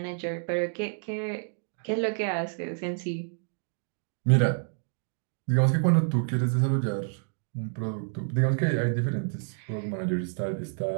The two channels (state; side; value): silent; left; digital silence